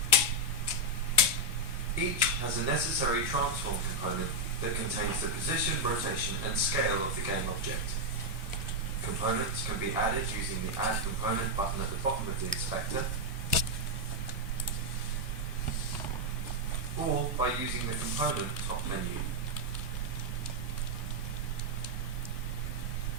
Each has a necessary transform component that contains the position, rotation, and scale of the game object. Components can be added using the Add Component button at the bottom of the inspector, or by using the component top menu.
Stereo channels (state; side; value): normal; both; correlation 0.02